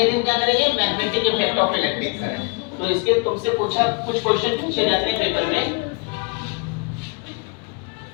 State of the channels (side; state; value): right; quieter; 34.1 dB